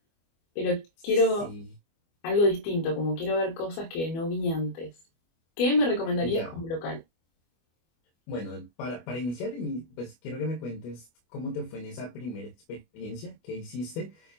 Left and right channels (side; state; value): right; late; 25 ms